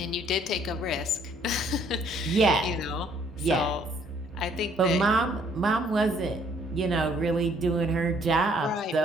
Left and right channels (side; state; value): both; normal; correlation 0.63